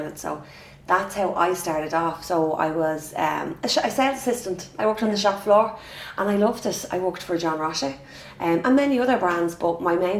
So that's how I started off. So I was a sales assistant. I worked on the shop floor and I loved it. I worked for John Roche and many other brands, but my main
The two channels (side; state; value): both; identical; correlation 1.00